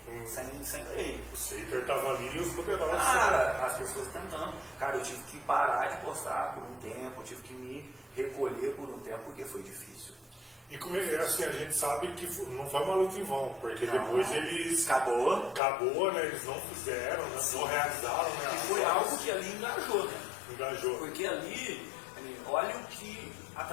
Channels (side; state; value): right; drops out; at 15.6 s